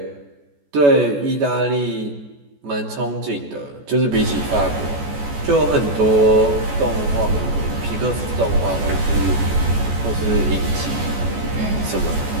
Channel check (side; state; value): left; late; 14 ms